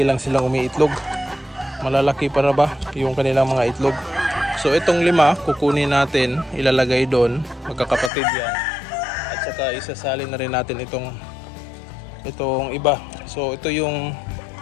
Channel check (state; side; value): drops out; right; at 8.1 s